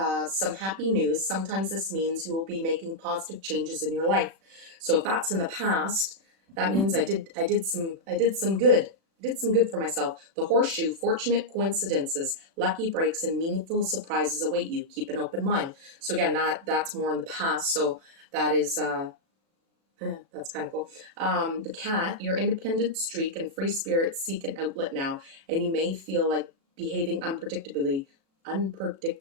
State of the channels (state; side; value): late; left; 36 ms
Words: some happy news. Sometimes this means you will be making positive changes in your life. So if that's in the past, that means I did some good. I did some good for myself. The horseshoe, fortunate coincidences, lucky breaks, and meaningful surprises await you. Keep an open mind. So again, that's more in the past. So that is that's kind of cool. The cat, your independent streak and free spirit seek an outlet now, and you may feel like behaving unpredictably.